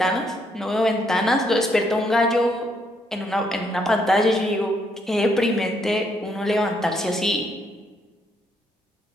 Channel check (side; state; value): both; normal; correlation 0.73